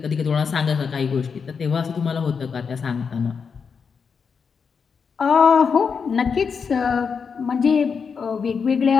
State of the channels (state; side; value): quieter; right; 5.9 dB